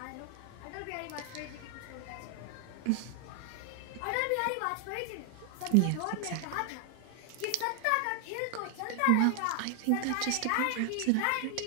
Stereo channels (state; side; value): different; both; correlation 0.00